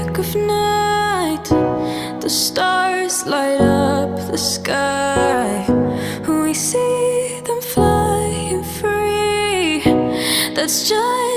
of night, the stars light up the sky. We see them flying free. That's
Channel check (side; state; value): both; identical; correlation 1.00